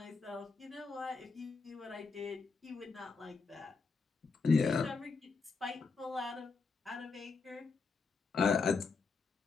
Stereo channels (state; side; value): quieter; right; 4.6 dB